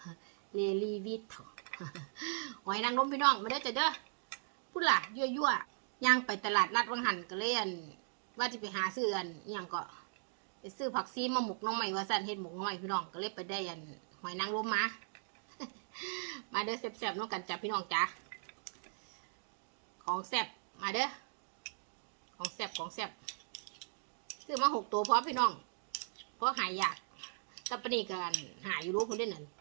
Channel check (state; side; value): silent; left; digital silence